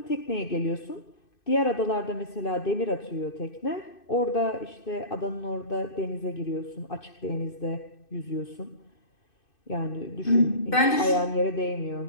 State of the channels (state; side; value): late; right; 2.6 ms